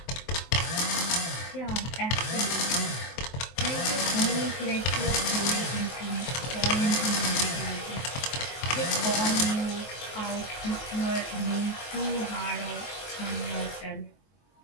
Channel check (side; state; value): right; late; 23 ms